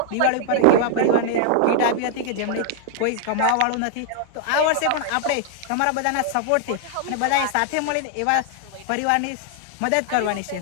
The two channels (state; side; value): different; both; correlation -0.01